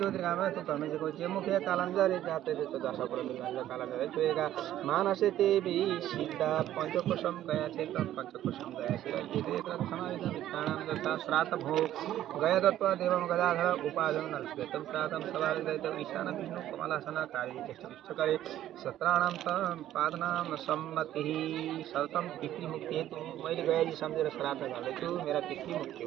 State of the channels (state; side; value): quieter; left; 12.6 dB